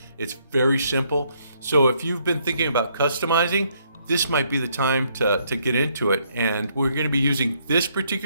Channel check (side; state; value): both; inverted; correlation -0.71